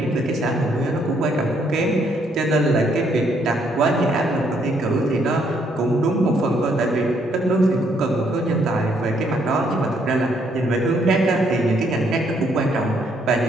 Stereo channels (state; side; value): normal; both; correlation 0.70